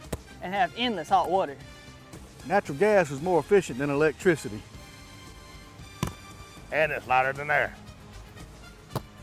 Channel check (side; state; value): both; identical; correlation 1.00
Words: And have endless hot water. Natural gas is more efficient than electricity. And it's lighter than air.